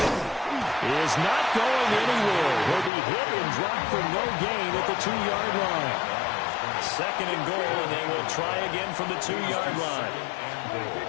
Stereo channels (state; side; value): drops out; right; at 2.9 s